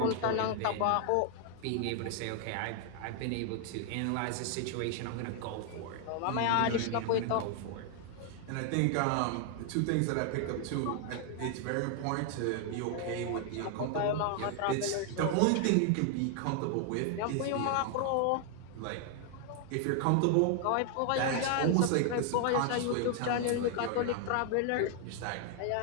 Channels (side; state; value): both; different; correlation 0.00